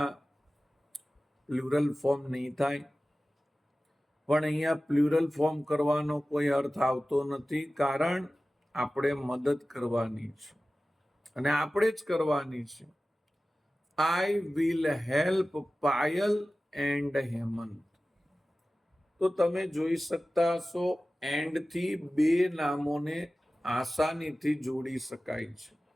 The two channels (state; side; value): normal; both; correlation 0.96